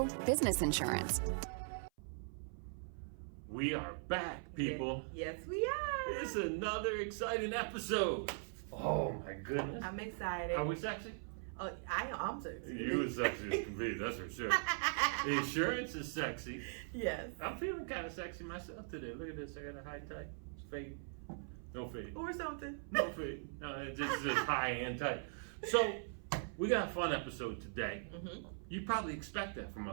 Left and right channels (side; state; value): left; silent; 51 dB below the other